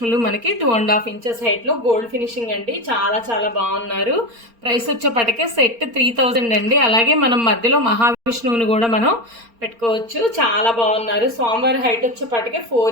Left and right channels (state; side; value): late; left; 4.3 ms